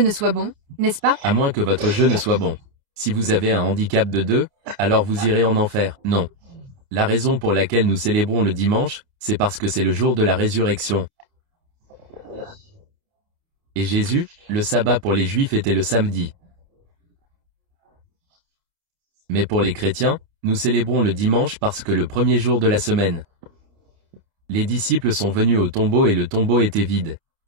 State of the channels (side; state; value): left; late; 29 ms